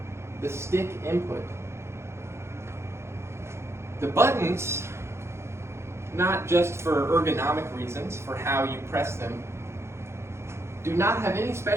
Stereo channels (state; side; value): late; left; 0.13 ms